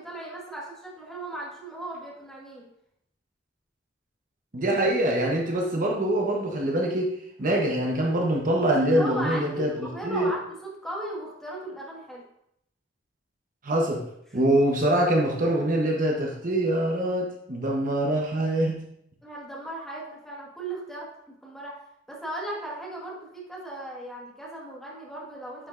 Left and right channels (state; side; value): normal; both; correlation 0.50